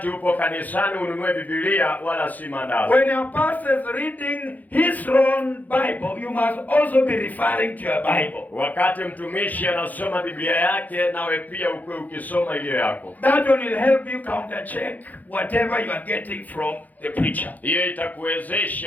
upo kanisani ununue Biblia wala si mandazi. When your pastor is reading his own Bible, you must also be referring to your Bible. Wakati mtumishi anasoma Biblia yake, nawe pia ukue ukisoma ile yako. That one will help you counter check whatever you are getting from the preacher. Hiyo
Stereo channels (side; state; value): right; late; 0.081 ms